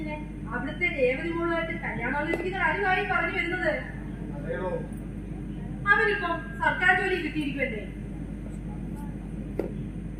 അവിടുത്തെ രേവതി മോളുമായിട്ട് കല്യാണാലോചിക്കുന്ന കാര്യമായി പറഞ്ഞു വരുന്നത്. അതേയോ, അവനിപ്പം സർക്കാർ ജോലി കിട്ടിയിരിക്കുമല്ലേ?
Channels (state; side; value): identical; both; correlation 1.00